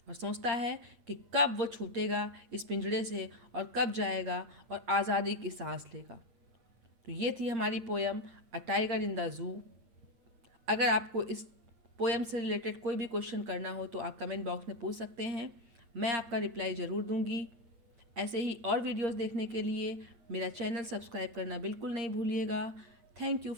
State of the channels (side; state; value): left; late; 8.6 ms